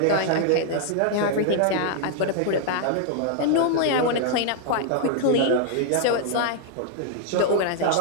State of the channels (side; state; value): both; different; correlation 0.00